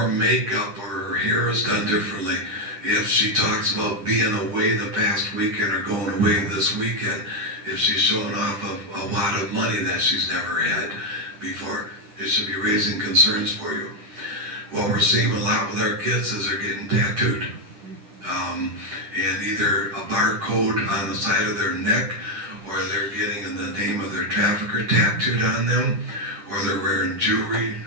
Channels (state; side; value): late; left; 9.9 ms